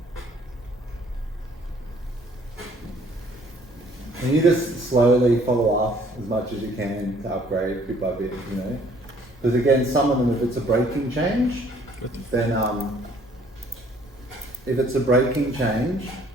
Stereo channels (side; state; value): both; normal; correlation 0.60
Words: And you just slowly follow up as much as you can to upgrade bit by bit, you know. Because again, some of them, if it's a breaking change, then if it's a breaking change,